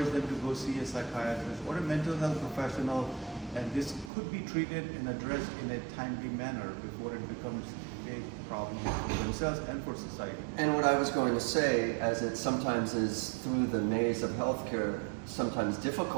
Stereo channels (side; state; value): left; drops out; at 4.1 s